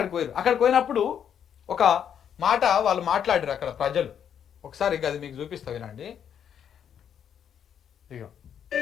పోయినప్పుడు ఒక మాట వాళ్ళు మాట్లాడారు అక్కడ ప్రజలు. ఒకసారి అది మీకు చూపిస్తా వినండి. ఇగో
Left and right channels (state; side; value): quieter; right; 8.7 dB